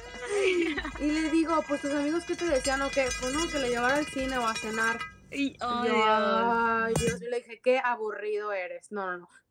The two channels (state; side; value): identical; both; correlation 1.00